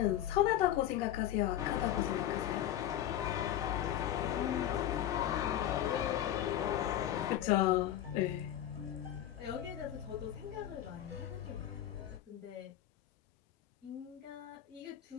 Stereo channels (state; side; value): quieter; right; 12.0 dB